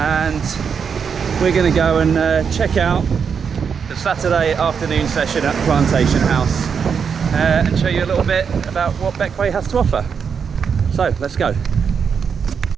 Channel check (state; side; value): quieter; left; 6.5 dB